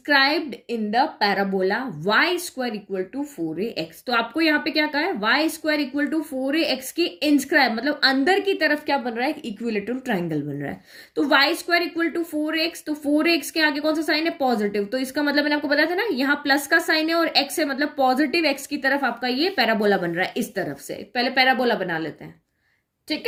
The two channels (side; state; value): both; identical; correlation 1.00